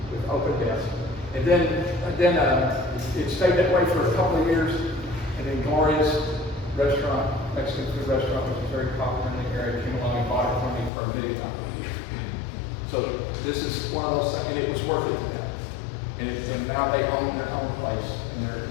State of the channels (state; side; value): drops out; right; at 10.9 s